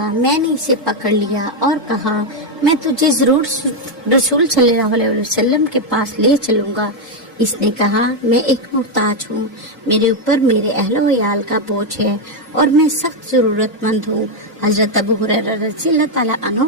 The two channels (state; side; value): normal; both; correlation 0.03